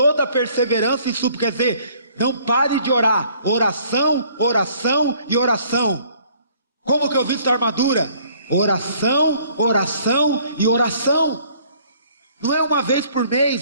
a perseverança e súplica, quer dizer, não pare de orar, oração, oração e oração. Como que eu visto a armadura? Oração, oração e oração. Não é uma vez por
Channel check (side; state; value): both; inverted; correlation -0.59